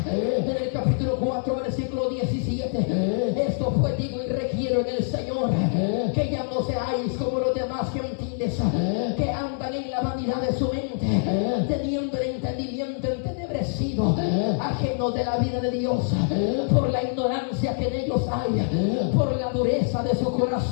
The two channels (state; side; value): silent; right; digital silence